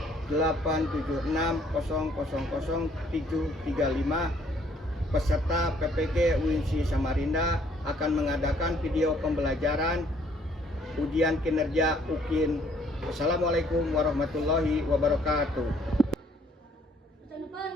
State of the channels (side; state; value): both; normal; correlation 0.63